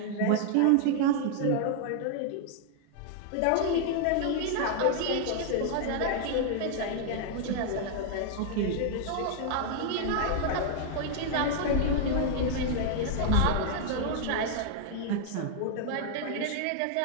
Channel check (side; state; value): both; different; correlation 0.00